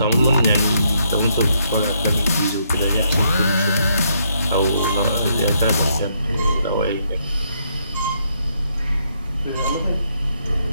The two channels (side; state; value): both; inverted; correlation -0.74